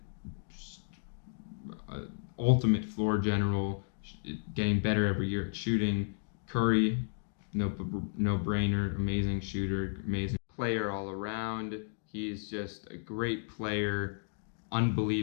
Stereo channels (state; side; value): silent; right; digital silence